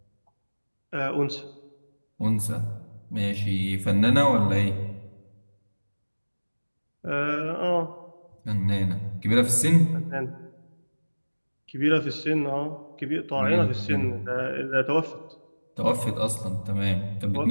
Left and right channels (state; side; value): inverted; both; correlation -1.00